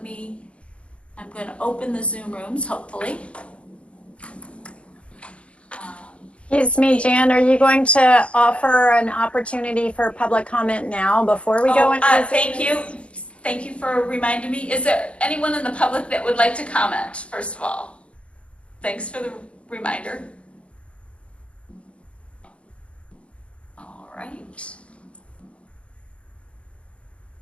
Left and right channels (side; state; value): right; late; 0.060 ms